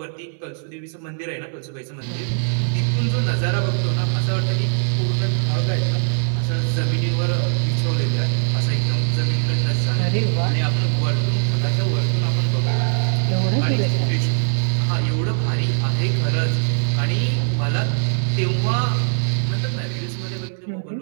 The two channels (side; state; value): left; silent; 65 dB below the other